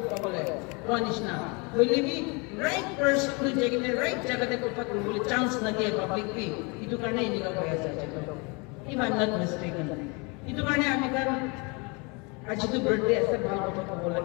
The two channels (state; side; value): quieter; right; 30.1 dB